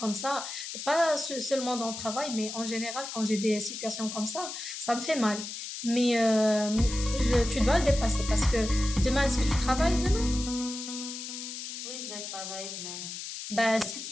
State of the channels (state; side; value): noise; left; hiss, 8 dB below the sound